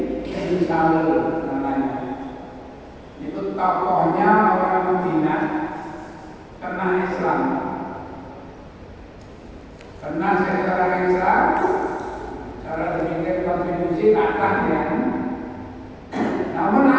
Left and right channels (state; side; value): identical; both; correlation 1.00